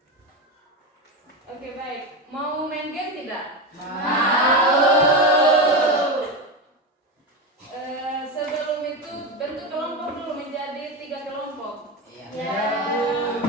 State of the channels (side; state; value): both; normal; correlation 0.17